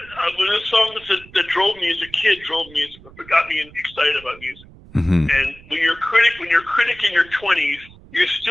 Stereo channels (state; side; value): noise; right; rumble, 22 dB below the sound